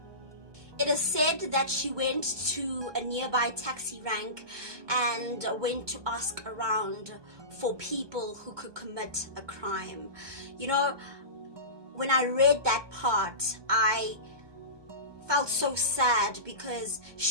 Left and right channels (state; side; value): late; left; 1.2 ms